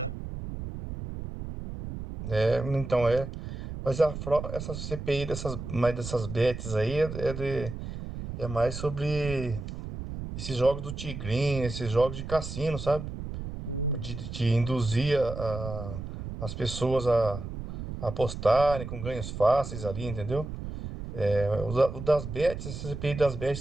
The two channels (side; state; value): right; noise; rumble, 8 dB below the sound